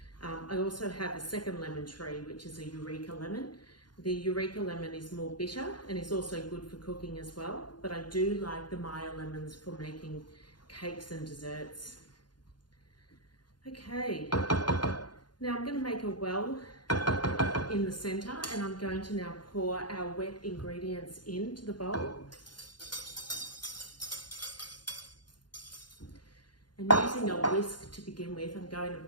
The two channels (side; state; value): right; late; 0.71 ms